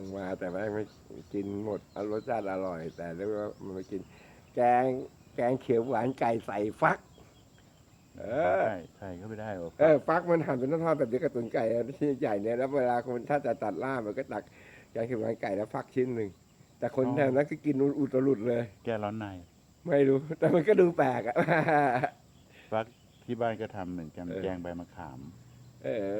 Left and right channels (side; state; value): both; identical; correlation 1.00